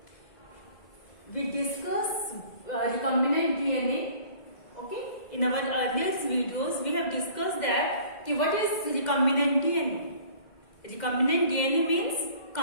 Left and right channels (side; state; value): right; late; 2.0 ms